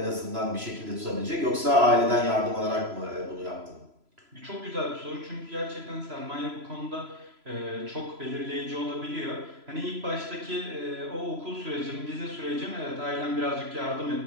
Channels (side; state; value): left; late; 3.0 ms